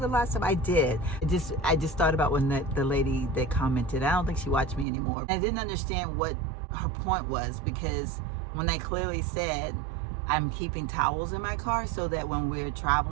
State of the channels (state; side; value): drops out; left; at 4.9 s